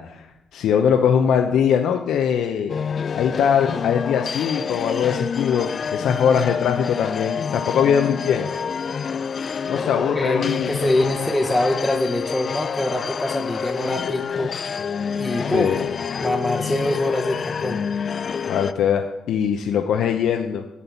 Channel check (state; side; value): quieter; right; 5.7 dB